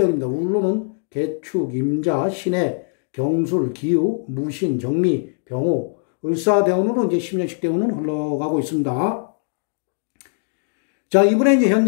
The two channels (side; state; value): right; silent; digital silence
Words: 울로는 개축, 임자, 신해, 경술, 기우, 무신, 정미, 병호, 을사대운으로 이제 10년씩 대운은 흘러가고 있습니다. 자, 이분의 이제